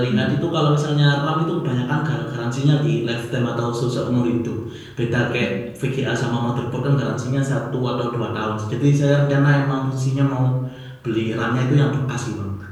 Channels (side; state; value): both; identical; correlation 1.00